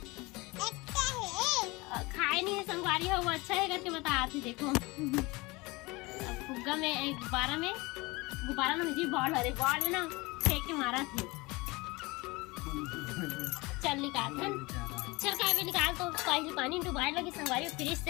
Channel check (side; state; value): right; quieter; 23.8 dB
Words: खाए नहीं है संगवारी हो, वो अच्छा है करके बता थी। देखो अब फुग्गा में गुब्बारा में मुझे बॉल में ना फेंक के मारा थे। चल निकाल चल काव्य निकाल। तो पहले पानी में डुबाए लगी संगवारी फ्रिज